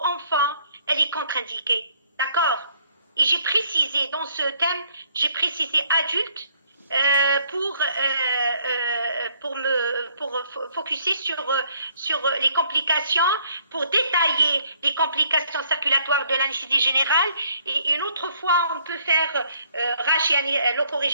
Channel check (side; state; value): both; inverted; correlation -0.65